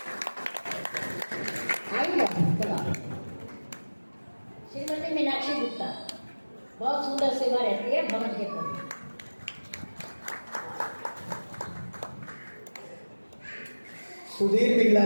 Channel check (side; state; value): both; inverted; correlation -1.00